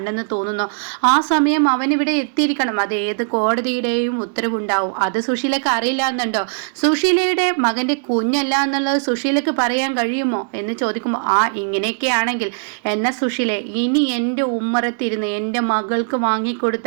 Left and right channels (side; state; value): left; silent; digital silence